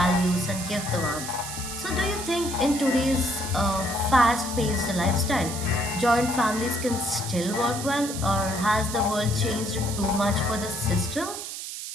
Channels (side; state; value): right; noise; hiss, 8 dB below the sound